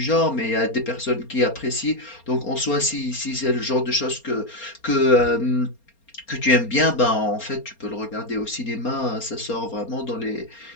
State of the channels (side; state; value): right; late; 4.3 ms